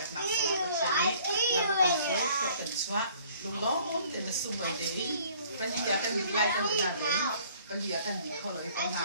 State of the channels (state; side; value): inverted; both; correlation -0.56